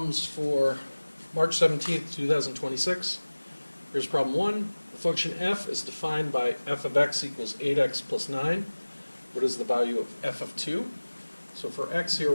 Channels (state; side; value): inverted; both; correlation -1.00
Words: for March 17th, 2026. Here's problem 1. The function f is defined by f of x equals 8x plus 9. What is the value of f of 2? So for x here,